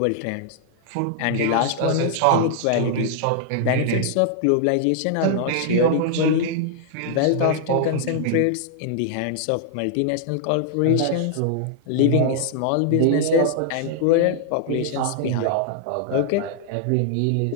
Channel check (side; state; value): both; different; correlation -0.01